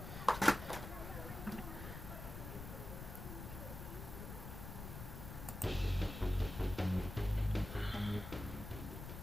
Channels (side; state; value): left; noise; rumble, 8 dB below the sound